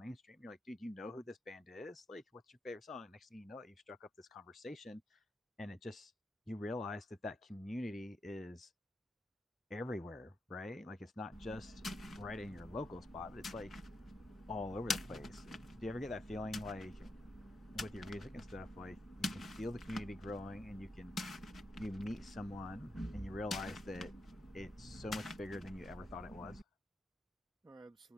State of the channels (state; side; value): normal; both; correlation 0.84